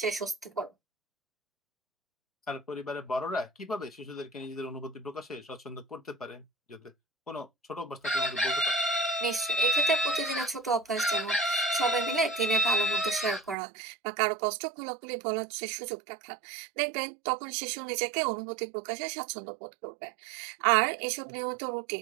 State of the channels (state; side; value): drops out; left; at 13.6 s